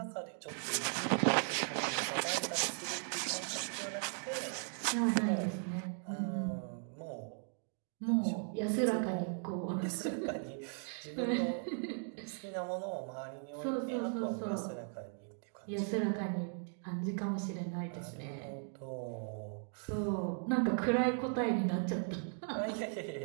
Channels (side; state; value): left; silent; 53 dB below the other